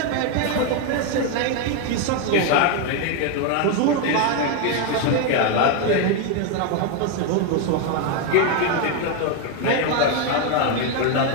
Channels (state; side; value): different; both; correlation 0.01